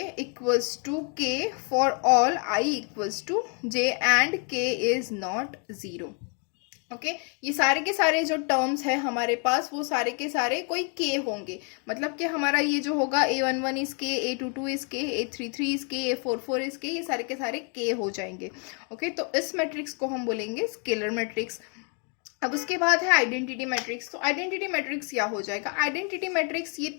equals to k for all i equals to j and k is not 0, okay. ये सारे के सारे जो टर्म्स है हमारे पास वो सारे के सारे कोई k होंगे, मतलब कि हमारा ये जो होगा a11 is k, a22 is k, a33 is k, a44 is k, ये सारे के सारे k हो जाएंगे, ओके। तो इस मैट्रिक्स को हम बोलेंगे स्केलर मैट्रिक्स। अब उसके बाद है आइडेंटिटी मैट्रिक्स। तो आइडेंटिटी मैट्रिक्स क्या हो जाएगा, आइडेंटिटी मैट्रिक्स ये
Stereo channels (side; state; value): right; quieter; 37.8 dB